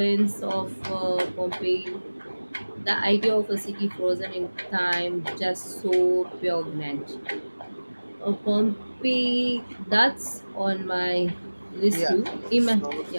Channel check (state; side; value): inverted; both; correlation -1.00